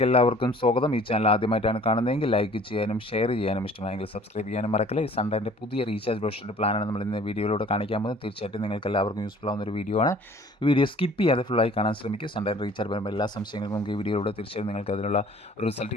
എല്ലാവർക്കും സ്വാഗതം. ഈ ചാനൽ ആദ്യമായിട്ടാണ് കാണുന്നതെങ്കിൽ ലൈക്ക് ചെയ്യാനും ഷെയർ ചെയ്യാനും ഇഷ്ടമായെങ്കിൽ സബ്സ്ക്രൈബ് ചെയ്യാനും മറക്കല്ലേ. സൺഡേൻ്റെ പുതിയ റീചാർജ് ബ്രോഷറിൻ്റെ പ്ലാനാണ് നമ്മൾ ഇന്ന് വീഡിയോയിലൂടെ കാണിക്കാൻ പോകുന്നത്. തീർച്ചയായിട്ടും നിങ്ങൾക്ക് എല്ലാവർക്കും യൂസ്ഫുൾ ആവുന്ന ഒരു വീഡിയോ ആണ്. വീഡിയോ സ്കിപ്പ് ചെയ്യാതെ ഫുള്ളായി കാണാൻ ശ്രമിക്കുക. സൺഡേ റീചാർജ് വരുമ്പോൾ എല്ലാ സംശയങ്ങൾക്കും നമുക്ക് ഈ വീഡിയോയിലൂടെ തീർച്ചയായും നിങ്ങൾക്ക് അതിനുള്ള ഒരു റിസൾട്ട്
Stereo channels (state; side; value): normal; both; correlation 0.51